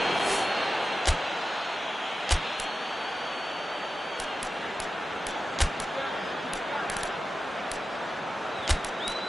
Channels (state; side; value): normal; both; correlation 0.93